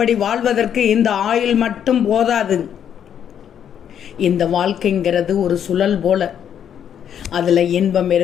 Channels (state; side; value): quieter; right; 9.1 dB